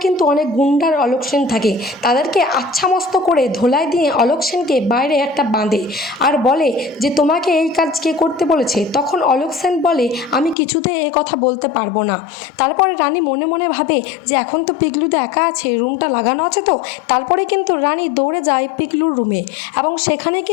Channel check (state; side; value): drops out; right; at 10.6 s